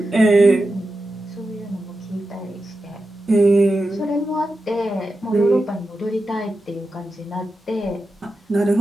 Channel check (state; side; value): normal; both; correlation 0.90